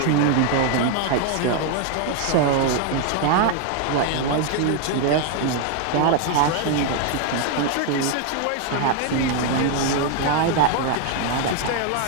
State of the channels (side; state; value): both; different; correlation 0.01